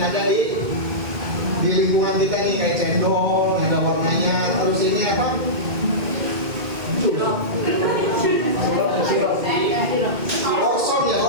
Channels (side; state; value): left; late; 2.1 ms